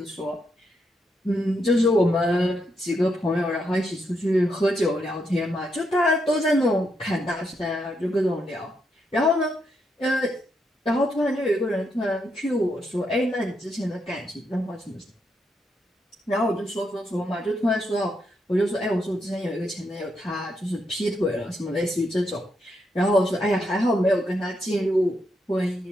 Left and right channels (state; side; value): normal; both; correlation 0.80